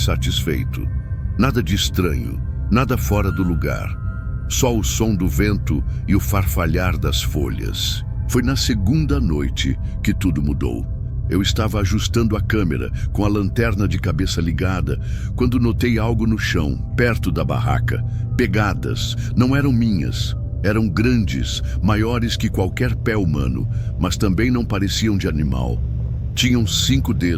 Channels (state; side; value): identical; both; correlation 1.00